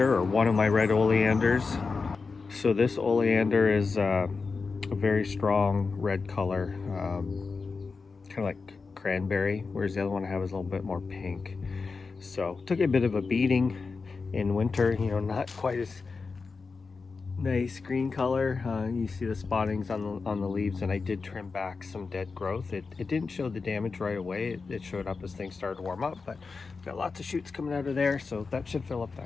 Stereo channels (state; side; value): quieter; right; 4.5 dB